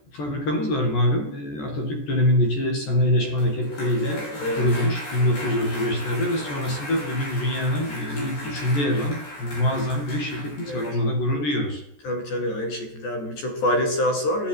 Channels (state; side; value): late; right; 14 ms